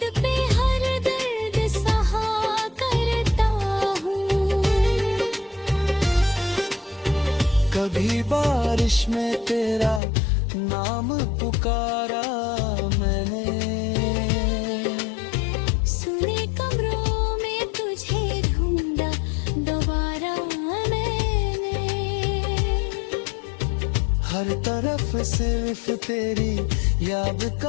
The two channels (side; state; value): right; drops out; at 10.0 s